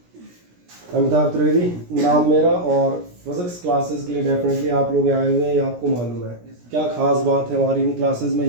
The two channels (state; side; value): late; left; 17 ms